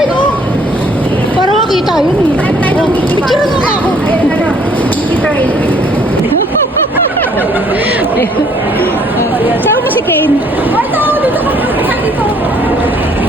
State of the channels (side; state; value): both; normal; correlation 0.62